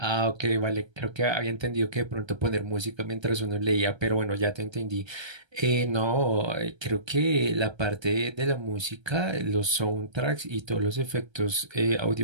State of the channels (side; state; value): left; late; 1.3 ms